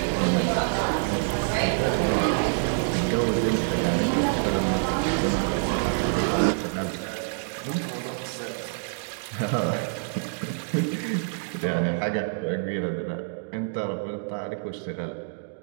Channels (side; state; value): left; silent; digital silence